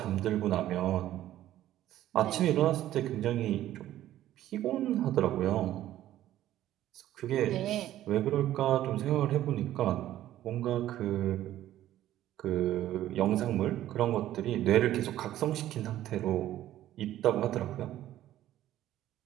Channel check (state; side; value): quieter; left; 13.2 dB